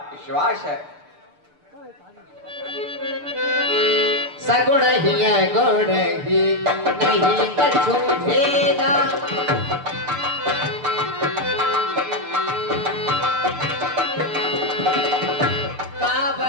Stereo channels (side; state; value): left; late; 6.8 ms